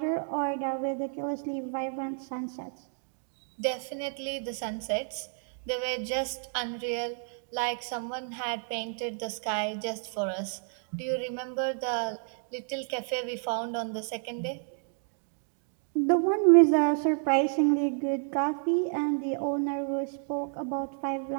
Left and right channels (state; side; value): silent; left; 57 dB below the other